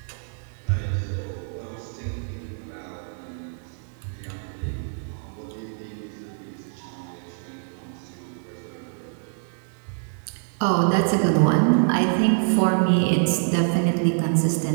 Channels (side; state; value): left; silent; digital silence